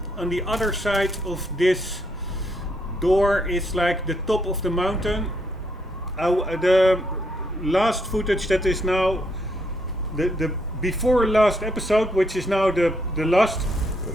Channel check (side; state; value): both; normal; correlation 0.74